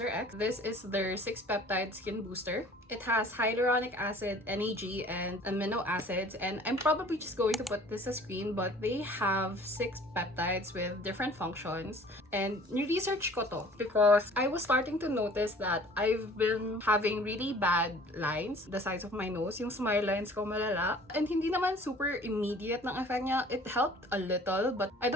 This is their 6-peptide skin booster. It has hyaluronic acid, NAG, and amino acids, and I'm probably just going to put this as screen, but they have 6 peptides with different functions. And ni-research ko to because I was starting to notice that I've been having really bad lines, the sides of my nose, yung smile lines ko malala. And hindi naman super immediate ng effect niya. It helped a little, but I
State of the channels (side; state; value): both; normal; correlation 0.50